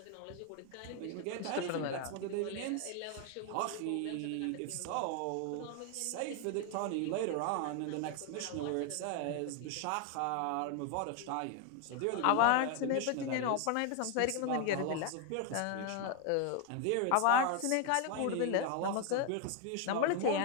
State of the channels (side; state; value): both; different; correlation 0.01